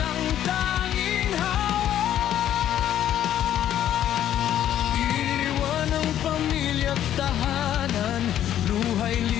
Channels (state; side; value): quieter; right; 11.2 dB